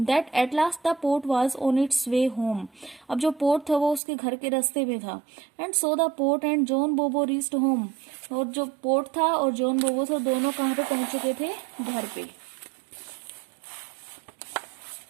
at last the port was on it's way home, अब जो पोर्ट था वो उसके घर के रास्ते में था। And so the port and John बोबो रीच्ड होम, और जो पोर्ट था और जॉन बोबो था दोनों कहाँ पे पहुंच चुके थे? घर पे।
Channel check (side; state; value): left; drops out; at 4.0 s